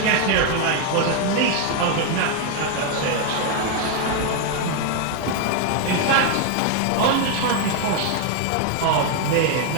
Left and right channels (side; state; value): both; different; correlation 0.01